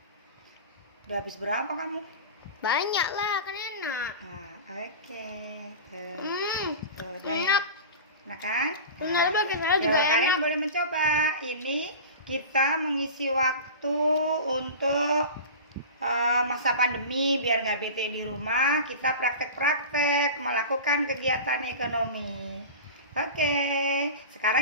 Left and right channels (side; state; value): both; inverted; correlation -0.32